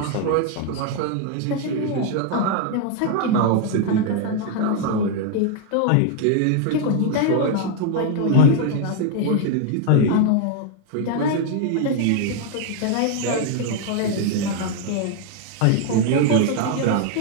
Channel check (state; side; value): different; both; correlation 0.00